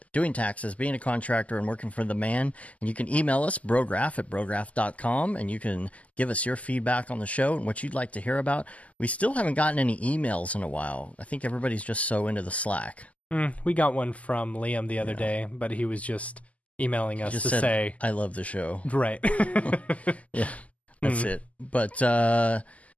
doing taxes, being a contractor, and working for the man. And you can email us, brograph@brograph.com, and you can give us your feedback on the show and what you'd like to hear about. We still haven't gotten any emails in a while. I think everybody's just so into the Slack. We got one from Liam the other day, but he was just emailing us to say, I love the show. Right. Yeah, that's it. But it's going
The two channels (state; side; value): late; right; 0.070 ms